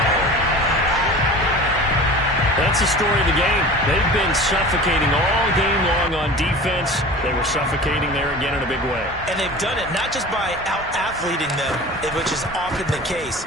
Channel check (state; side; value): normal; both; correlation 0.38